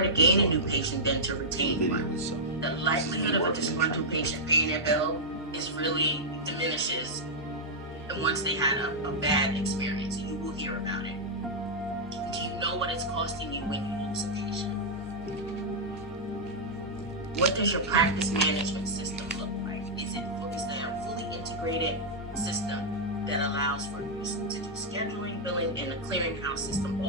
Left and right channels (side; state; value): both; normal; correlation -0.06